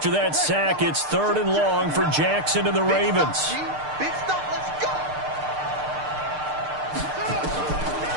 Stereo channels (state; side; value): late; left; 6.6 ms